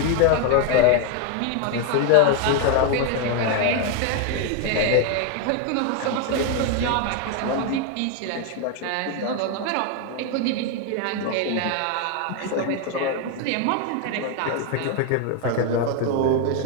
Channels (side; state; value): both; different; correlation 0.01